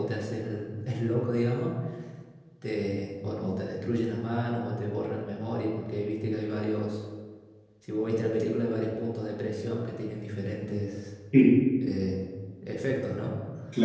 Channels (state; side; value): identical; both; correlation 1.00